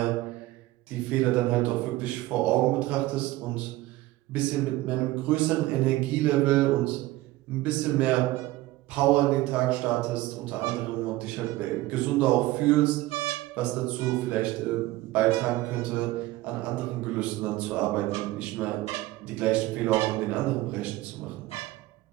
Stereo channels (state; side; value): quieter; left; 17.6 dB